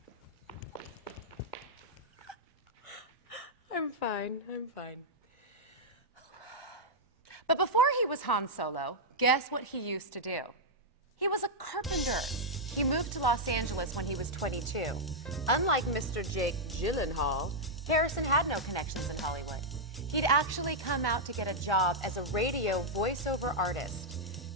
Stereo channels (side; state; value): both; normal; correlation -0.05